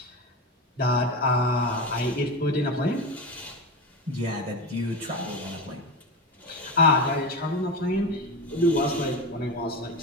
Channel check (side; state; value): both; normal; correlation 0.22